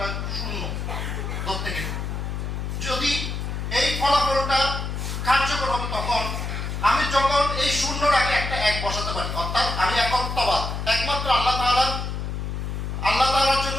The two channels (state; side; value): noise; left; hum, 4 dB below the sound